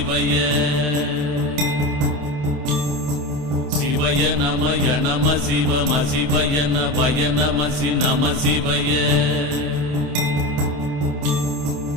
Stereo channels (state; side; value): late; left; 28 ms